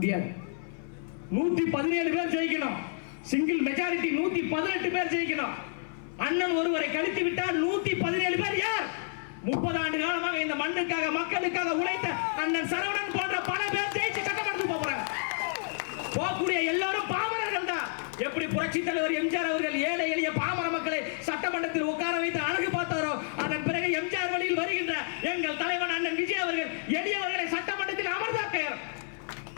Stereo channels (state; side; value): silent; right; 57 dB below the other